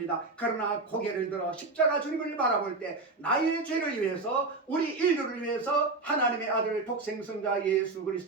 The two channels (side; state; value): left; quieter; 3.5 dB